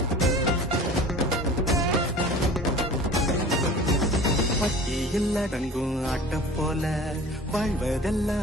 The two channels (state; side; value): normal; both; correlation 0.42